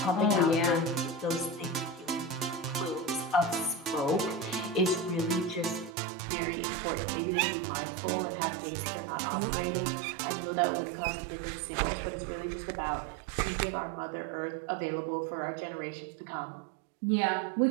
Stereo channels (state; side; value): drops out; left; at 6.0 s